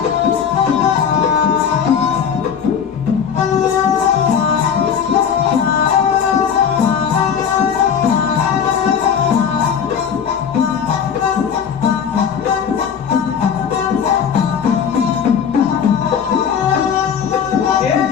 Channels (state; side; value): quieter; right; 7.4 dB